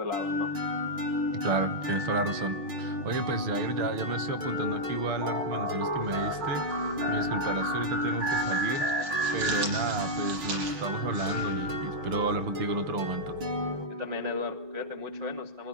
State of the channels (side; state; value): left; late; 6.2 ms